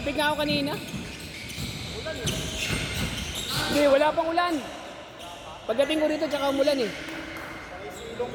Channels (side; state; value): both; identical; correlation 1.00